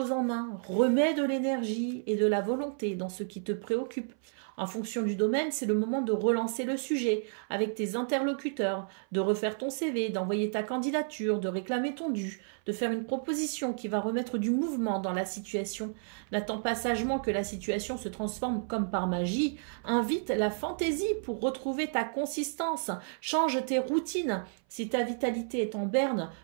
en main, remets de l'énergie et de la volonté dans ce qui te préoccupe. En fonction du domaine, c'est le moment de relancer le sujet avec tes interlocuteurs, de refaire ton CV, d'envoyer ta candidature, de réclamer ton dû, de faire une proposition qui va remettre du mouvement dans la situation. N'attends pas sagement que la situation se transforme comme par magie. Invite la fantaisie pour retrouver ta consistance. Change tes routines. Si ta vitalité est en berne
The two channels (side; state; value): left; silent; 57 dB below the other